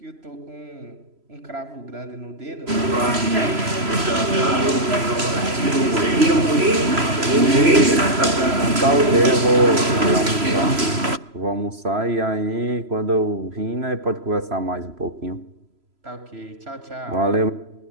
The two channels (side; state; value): left; late; 3.0 ms